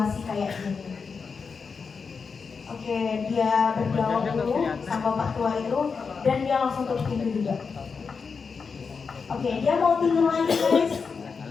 kayak gini? Oke, dia berdialog dulu sama bapak tua itu dan dia langsung tutup pintu juga. Oke, dia mau tidur lagi guys.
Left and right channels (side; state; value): right; quieter; 5.3 dB